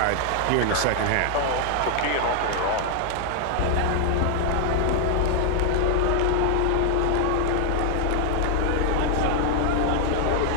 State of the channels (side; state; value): both; different; correlation 0.00